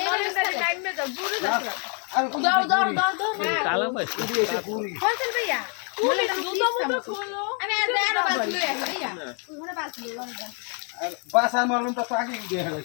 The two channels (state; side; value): quieter; right; 38.8 dB